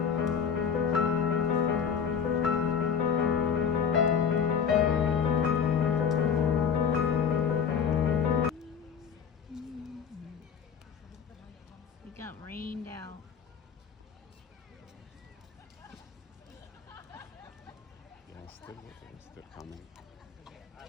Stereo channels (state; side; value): quieter; right; 7.0 dB